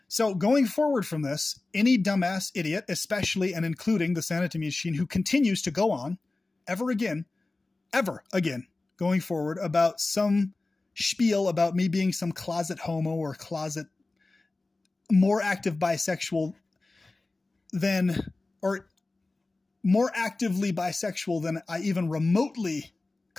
So going forward from this, any dumbass idiot, especially and including the Sanity Machine, who continues to go on ever again, going forward about some spiel about me being some closet homo or closet more active bisexual than, or more actively bisexual than I even remotely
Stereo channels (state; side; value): quieter; right; 3.2 dB